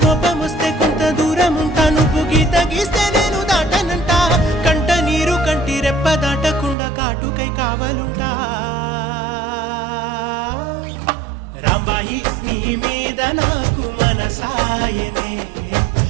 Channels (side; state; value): left; drops out; at 6.8 s